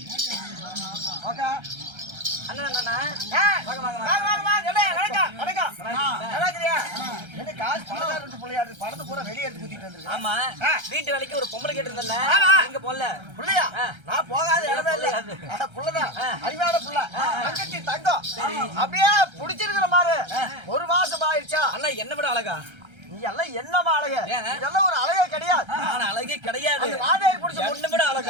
அண்ணா அண்ணா வாங்க வாங்க வாங்க வாங்க. வணக்கம் வணக்கம். நல்லா இருக்கீங்க? என்ன காசு பணக்காரங்க புள்ளையாடு பணத்தை பூரா வெளிய எடுத்து குத்திட்டு வந்திருக்கு. ஆமா, வீட்டு வேலைக்கு ஒரு பொம்பளை கேட்டிருந்தல்ல, எங்க போல புள்ளையா? நான் போகாத இடமே இல்ல. புள்ளதான் அறிவான புள்ள, தங்கச்சி தங்கம். அப்படியே புடிச்சிருக்கிற மாதிரி. ஒரு மாசம் ஆயிடுச்சா? அண்ணா என்ன விட அழகா? நீ எல்லாம் என்னமா அழகு? இதெல்லாம் ஒரு அழகே கிடையாது. நான் அழகே கிடையாது. நாதேரி புடிச்ச ஒண்ணு விட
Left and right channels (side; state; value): left; late; 1.3 ms